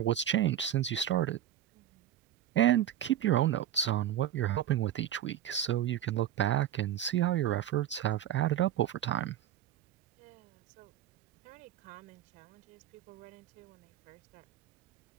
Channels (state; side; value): quieter; left; 11.1 dB